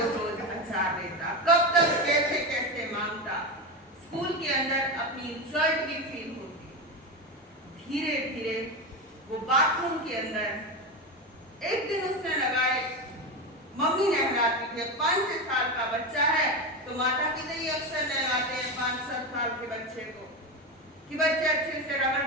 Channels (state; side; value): normal; both; correlation 0.17